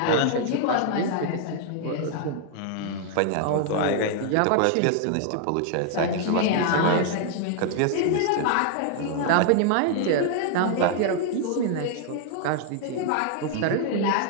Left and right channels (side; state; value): both; different; correlation 0.00